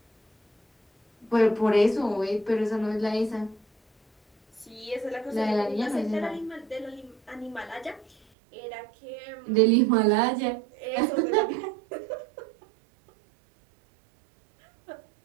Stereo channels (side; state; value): left; drops out; at 8.2 s